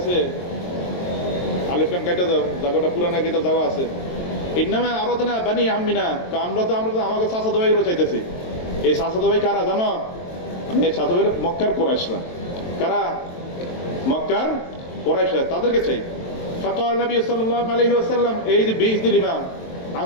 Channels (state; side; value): late; right; 23 ms